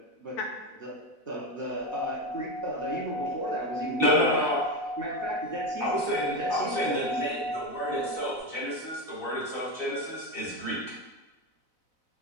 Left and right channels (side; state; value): right; late; 4.0 ms